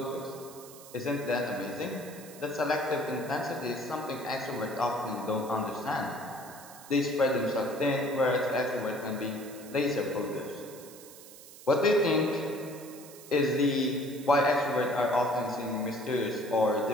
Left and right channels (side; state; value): right; noise; hiss, 18 dB below the sound